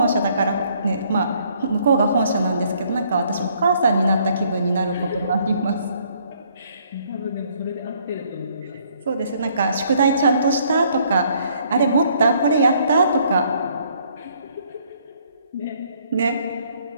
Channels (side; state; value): both; inverted; correlation -0.65